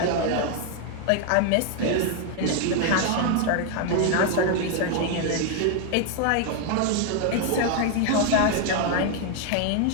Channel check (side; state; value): both; different; correlation 0.01